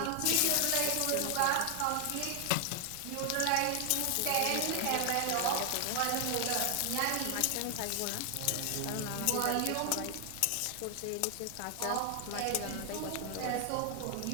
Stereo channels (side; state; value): both; different; correlation 0.00